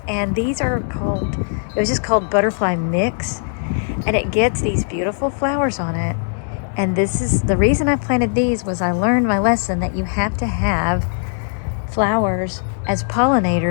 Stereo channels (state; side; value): silent; right; digital silence